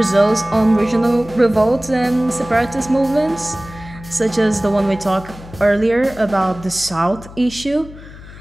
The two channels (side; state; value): left; noise; hum, 17 dB below the sound